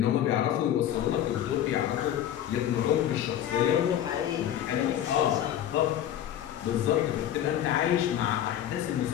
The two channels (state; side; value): quieter; right; 11.1 dB